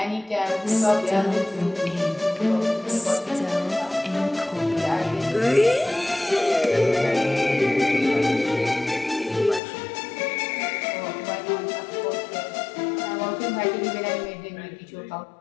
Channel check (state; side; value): drops out; right; at 9.6 s